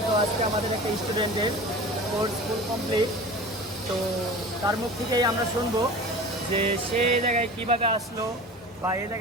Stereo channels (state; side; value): normal; both; correlation 0.36